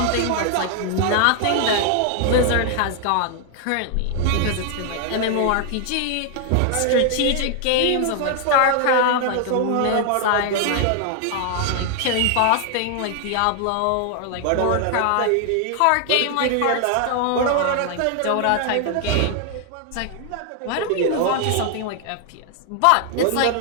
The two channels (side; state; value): both; different; correlation 0.00